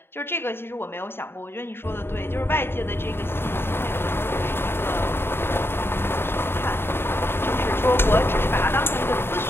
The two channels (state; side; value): late; right; 0.11 ms